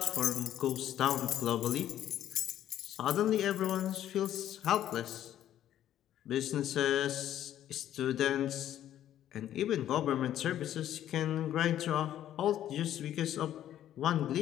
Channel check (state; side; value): quieter; right; 11.6 dB